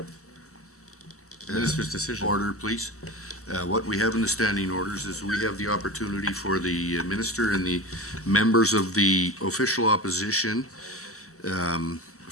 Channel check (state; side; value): normal; both; correlation 0.29